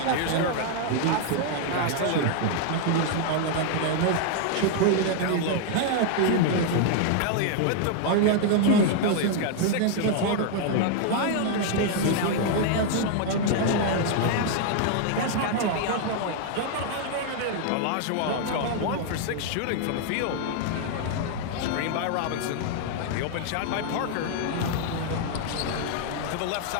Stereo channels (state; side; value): different; both; correlation 0.00